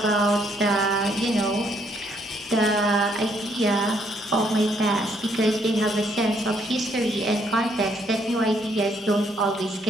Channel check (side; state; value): both; normal; correlation 0.70